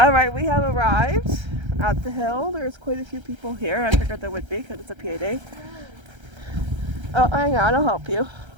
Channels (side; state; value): left; late; 1.3 ms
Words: we have arrived at the hill. There's quite a few people here. I figured there would be because it's a PA day. Oh, hang on. I'll help you.